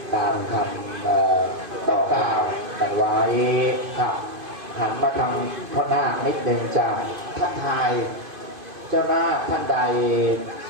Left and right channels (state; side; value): late; left; 2.5 ms